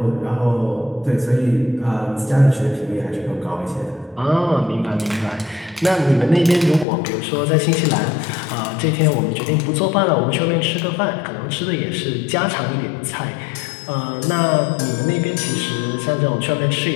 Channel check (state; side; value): drops out; right; at 6.9 s